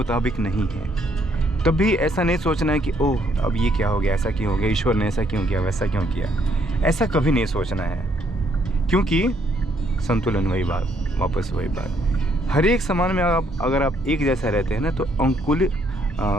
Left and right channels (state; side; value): normal; both; correlation 0.69